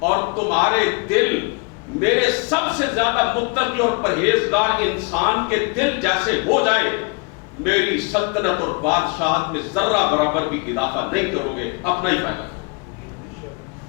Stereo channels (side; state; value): right; quieter; 31.5 dB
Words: اور تمہارے دل میرے سب سے زیادہ متقی اور پرہیزگار انسان کے دل جیسے ہو جائے، میری سلطنت اور بادشاہت میں ذرہ برابر بھی اضافہ نہیں کرو گے، اپنا ہی فائدہ کرو۔